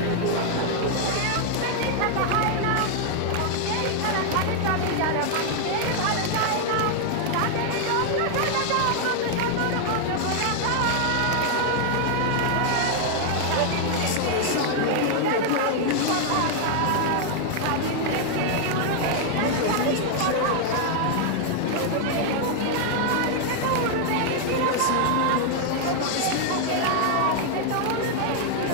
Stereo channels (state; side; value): different; both; correlation 0.00